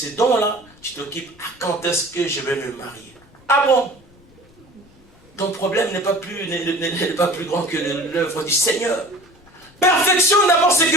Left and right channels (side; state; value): left; noise; rumble, 28 dB below the sound